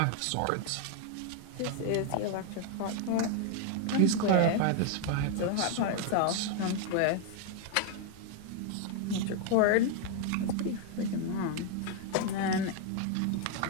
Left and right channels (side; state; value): both; different; correlation 0.00